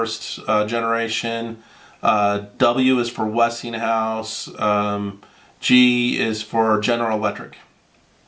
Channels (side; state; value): both; identical; correlation 1.00